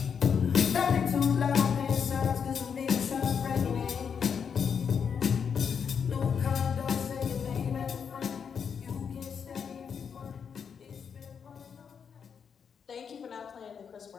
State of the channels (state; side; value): quieter; right; 6.9 dB